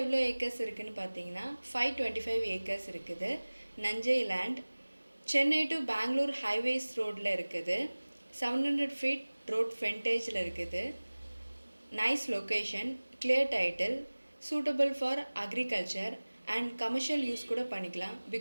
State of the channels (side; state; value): both; inverted; correlation -1.00